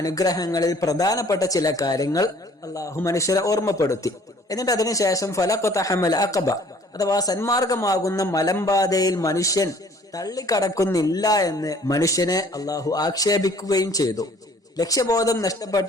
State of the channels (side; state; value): both; normal; correlation 0.55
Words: പ്രധാനപ്പെട്ട ചില കാര്യങ്ങൾ അല്ലാഹു മനുഷ്യരെ ഓർമ്മപ്പെടുത്തി. എന്നിട്ട് അതിനുശേഷം ഫലഖതഹമൽ അഖബ അഥവാ സന്മാർഗമാകുന്ന മലമ്പാതയിൽ മനുഷ്യൻ തള്ളിക്കടക്കുന്നില്ല എന്ന് മനുഷ്യനെ അല്ലാഹു ആക്ഷേപിക്കുകയും ചെയ്തു. ലക്ഷ്യബോധം